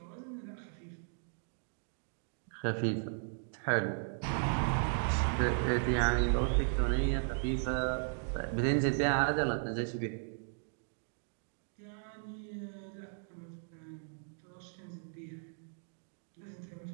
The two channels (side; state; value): left; silent; digital silence